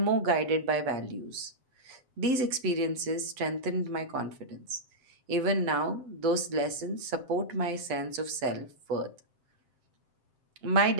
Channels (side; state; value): left; late; 7.7 ms